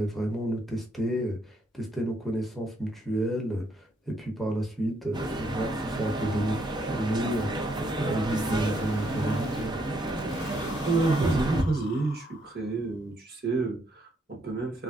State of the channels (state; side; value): normal; both; correlation 0.73